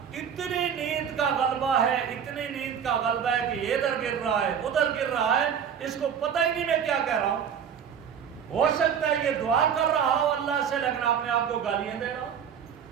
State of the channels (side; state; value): left; quieter; 7.9 dB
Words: اتنی نیند کا غلبہ ہے، اتنی نیند کا غلبہ ہے کہ یہ ادھر گر رہا ہے ادھر گر رہا ہے، اس کو پتہ ہی نہیں میں کیا کہہ رہا ہوں۔ ہو سکتا ہے یہ دعا کر رہا ہو اللہ سے لیکن اپنے آپ کو گالیاں دے رہا ہو۔